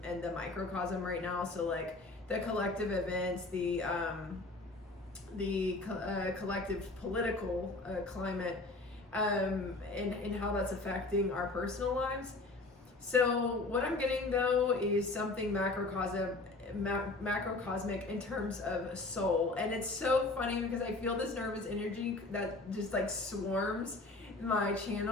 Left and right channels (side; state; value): right; quieter; 3.2 dB